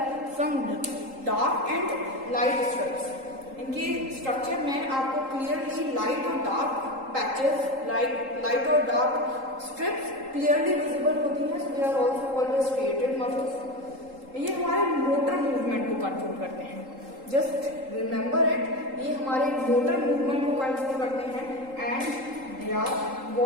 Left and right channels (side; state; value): left; late; 3.8 ms